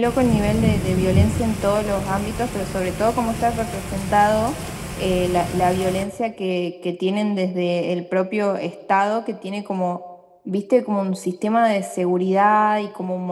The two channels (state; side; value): identical; both; correlation 1.00